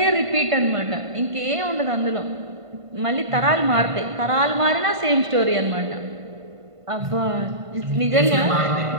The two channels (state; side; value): late; left; 1.5 ms